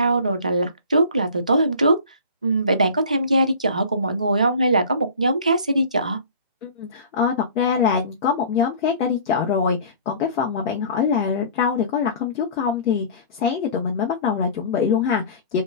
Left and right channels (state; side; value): inverted; both; correlation -0.42